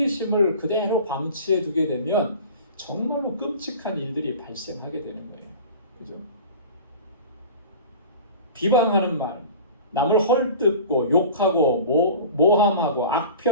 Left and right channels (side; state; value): both; inverted; correlation -0.38